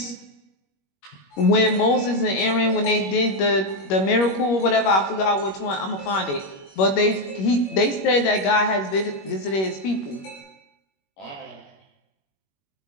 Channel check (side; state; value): right; late; 21 ms